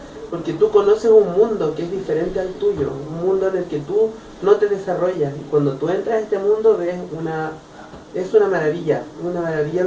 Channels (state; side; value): identical; both; correlation 1.00